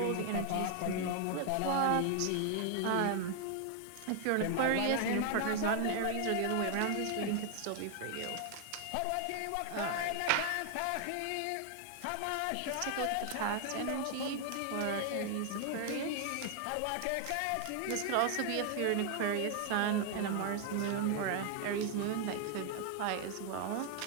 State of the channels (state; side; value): different; both; correlation 0.00